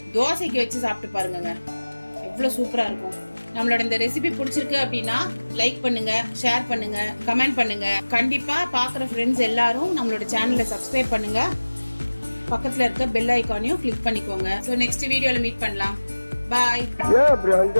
தோசைக்கு வச்சு சாப்பிட்டு பாருங்க, எவ்வளோ சூப்பராக இருக்கும். நம்மளோட இந்த ரெசிபி பிடிச்சிருக்கு அப்படின்னா லைக் பண்ணுங்க, ஷேர் பண்ணுங்க, கமெண்ட் பண்ணுங்க. கண்டிப்பா பார்க்குற ஃப்ரெண்ட்ஸ் எல்லாரும் நம்மளோட சேனலை சப்ஸ்கிரைப் பண்ணுங்க. பக்கத்தில் இருக்க பெல் ஐக்கானையும் கிளிக் பண்ணிக்கோங்க. ஸோ நெக்ஸ்ட் வீடியோவில் மீட் பண்ணலாம். பாய்.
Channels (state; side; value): inverted; both; correlation -1.00